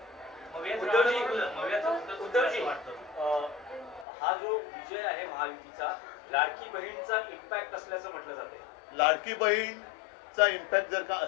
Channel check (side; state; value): right; drops out; at 4.0 s